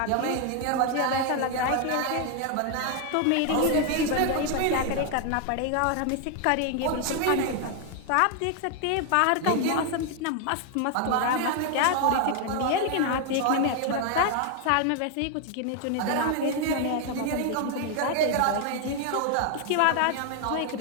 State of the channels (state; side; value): different; both; correlation 0.01